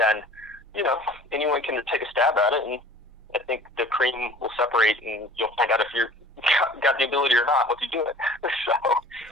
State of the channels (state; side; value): normal; both; correlation 0.46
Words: anyone can take a stab at it, and I think the cream will separate, and you'll find out if you're got the ability or not once you do it.